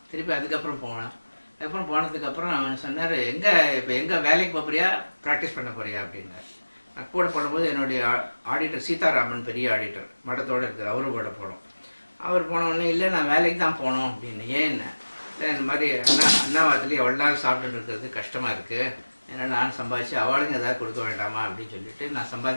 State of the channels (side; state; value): both; inverted; correlation -1.00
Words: திருப்பி அதுக்கப்புறம் போனேன். அதுக்கப்புறம் போனதுக்கப்புறம் அவன் சொன்னார், எங்கே வேலைக்கு போகிறியா, ப்ராக்டிஸ் பண்ண போறியா அப்படின்னார். நான் கூட போடும்போது என்னுடைய ஆடிட்டர் சீதாராமன், பெரிய ஆடிட்டர், மடத்தோடு இருக்கார், அவரும் கூட போனோம். அவர் போன உடனே இல்லை நான் வேலைக்கு தான் போகணும் அப்படின்னு. ஏன்னு இல்லை இந்த மாதிரி அண்ணாவாத்துலேயே எவ்வளோ நாள் சாப்பிட்டுட்டு இருக்கிறது கஷ்டமாக இருக்குது, ஏன்னா நான் சம்பாதிச்சு அவளுங்க ஏதாவது கொடுக்க வேண்டாமா அப்படின்னு சொல்லிட்டு நான்